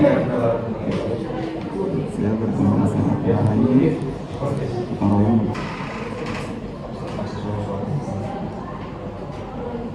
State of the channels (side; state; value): both; identical; correlation 1.00